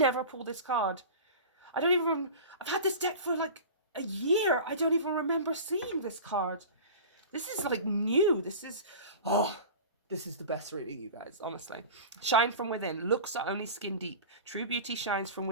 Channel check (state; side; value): inverted; both; correlation -0.34